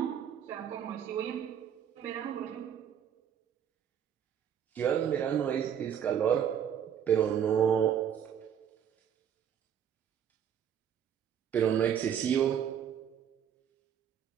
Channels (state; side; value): quieter; left; 8.9 dB